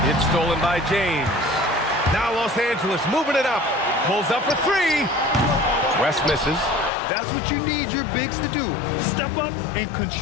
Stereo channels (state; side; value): drops out; right; at 6.9 s